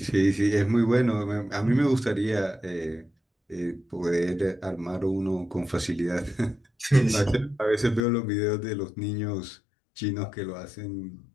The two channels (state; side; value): drops out; right; at 8.0 s